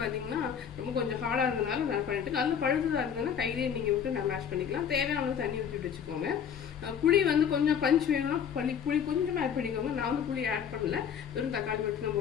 பார்த்தீங்கன்னா ரொம்ப கொஞ்சம் ஹார்டாக இருந்ததுனால நான் பண்ணிவிட்டு, நல்ல பழுத்ததாக இருந்ததுன்னா கையிலேயே நீங்கள் விட்டு நான் மேஷ் பண்ணிக்கலாம். தேவையான தண்ணி ஊற்றிட்டு வச்சுக்கோங்க. புளி கொஞ்சம் பஞ்ச் வேணும்னா புளி கொஞ்சம் ஆட் பண்ணிக்கோங்க. நான் புளி ஆட் பண்ணல, வெறும் தக்காளி மட்டும் தான்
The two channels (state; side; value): quieter; right; 7.9 dB